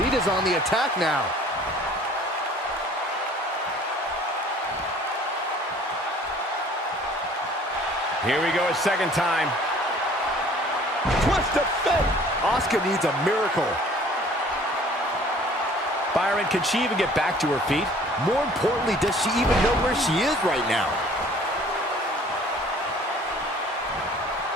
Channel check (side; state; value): both; normal; correlation 0.52